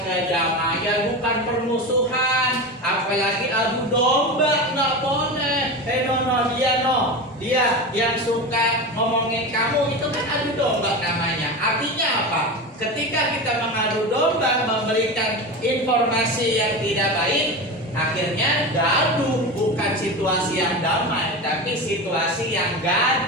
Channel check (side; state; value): both; normal; correlation 0.24